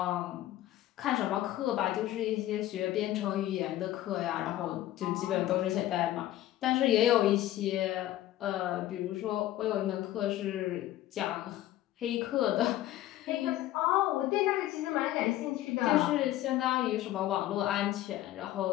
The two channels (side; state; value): right; quieter; 14.2 dB